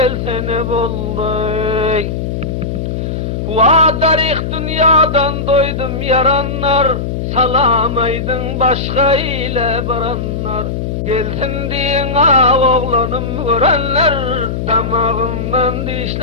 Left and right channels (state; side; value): noise; left; hum, 3 dB below the sound